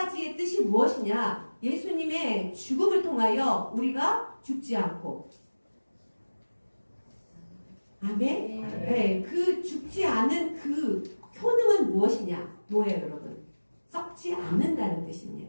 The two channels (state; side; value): inverted; both; correlation -1.00